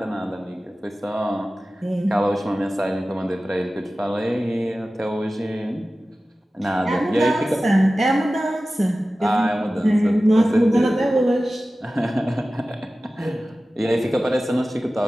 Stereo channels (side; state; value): both; normal; correlation 0.96